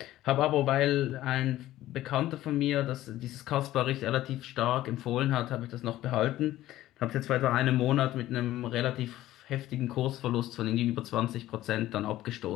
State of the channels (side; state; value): right; quieter; 14.6 dB